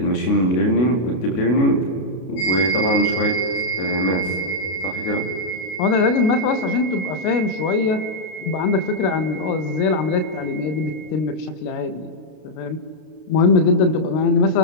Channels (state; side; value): late; right; 32 ms